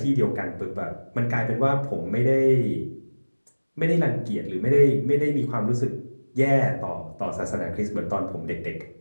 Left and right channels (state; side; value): inverted; both; correlation -1.00